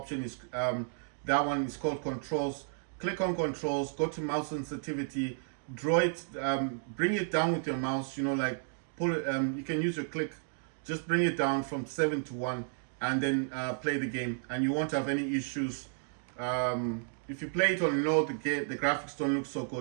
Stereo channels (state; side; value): silent; left; digital silence